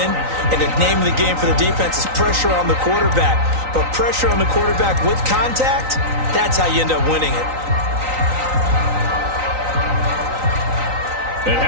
And the name of the game for the defense is pressure on the quarterback. But pressure on the quarterback with contact, that's how you end up winning it. And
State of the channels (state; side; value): late; left; 3.9 ms